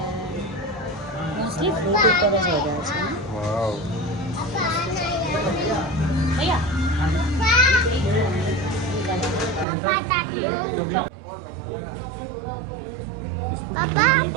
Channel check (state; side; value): drops out; left; at 9.7 s